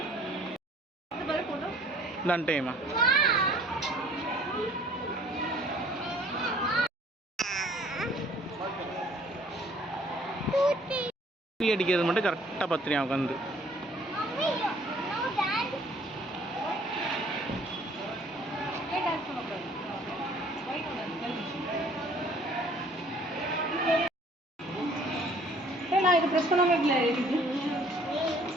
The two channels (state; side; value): normal; both; correlation 0.56